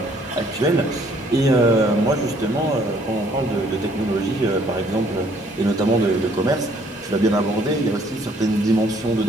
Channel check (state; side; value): normal; both; correlation 0.62